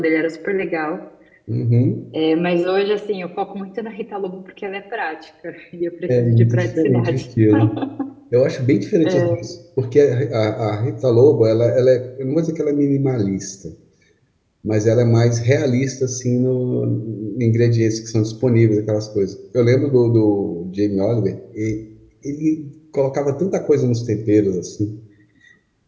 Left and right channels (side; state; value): both; identical; correlation 1.00